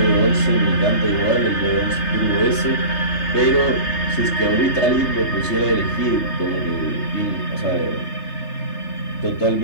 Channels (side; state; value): right; late; 3.3 ms